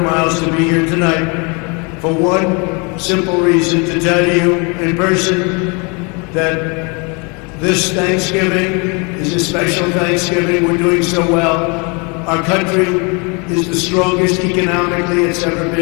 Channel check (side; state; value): right; quieter; 31.6 dB